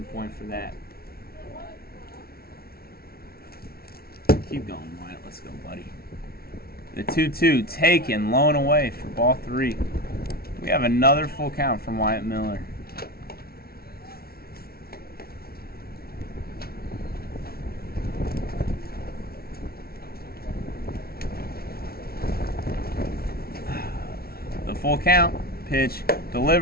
point for that. Keep going, Wyatt. Let's go, buddy. The 2-2 taken, low and away for ball 3. We have another full count from Wyatt Miller. The full count. Pitch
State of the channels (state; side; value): late; right; 0.44 ms